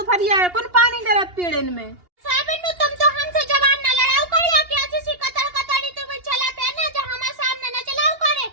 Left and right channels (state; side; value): late; left; 2.8 ms